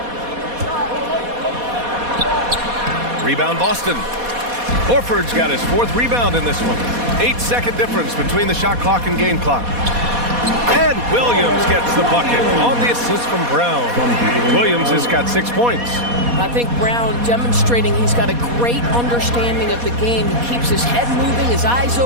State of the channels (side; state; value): left; late; 4.2 ms